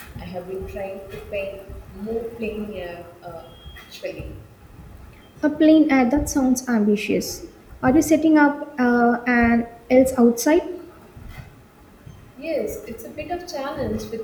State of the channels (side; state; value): both; identical; correlation 1.00